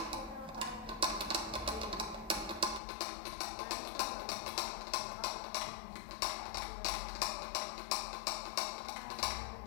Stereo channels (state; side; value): drops out; right; at 2.8 s